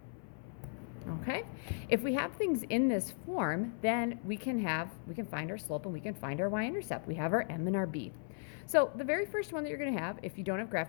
Okay, if we have things in this form, then we can find our slope and we can find our y-intercept. We have our m and our b. So the very first one that you're going to have, if you don't have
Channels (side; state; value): right; silent; 53 dB below the other